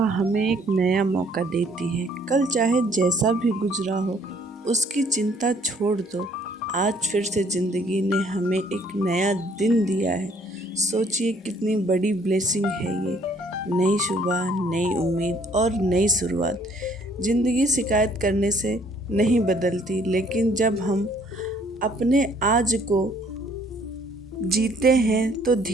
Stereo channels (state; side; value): normal; both; correlation 0.62